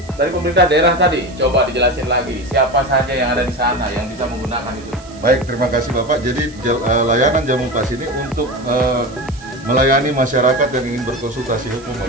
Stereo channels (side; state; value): right; noise; hiss, 23 dB below the sound